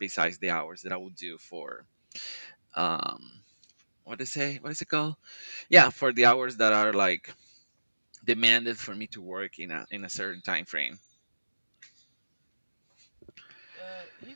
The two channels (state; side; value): inverted; both; correlation -1.00